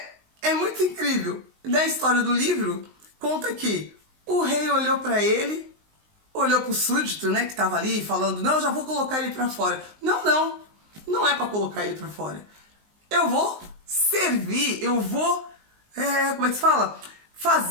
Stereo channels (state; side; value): late; left; 19 ms